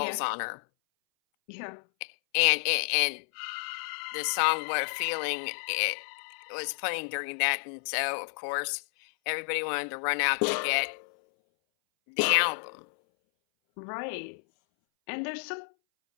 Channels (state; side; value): silent; right; 58 dB below the other